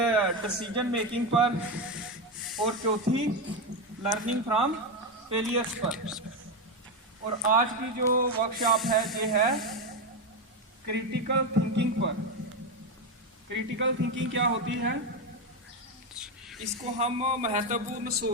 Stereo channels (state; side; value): normal; both; correlation 0.11